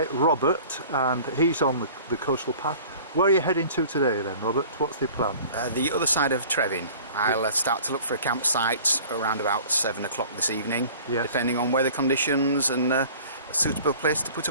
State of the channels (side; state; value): both; inverted; correlation -0.46